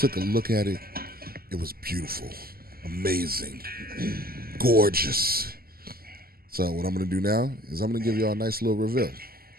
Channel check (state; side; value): late; left; 0.43 ms